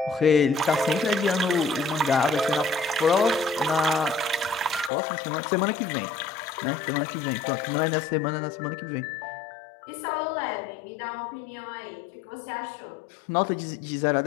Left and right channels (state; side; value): drops out; right; at 4.9 s